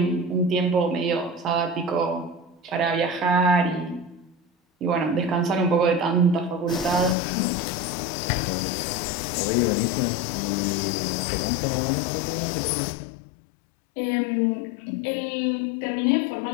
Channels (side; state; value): right; drops out; at 7.2 s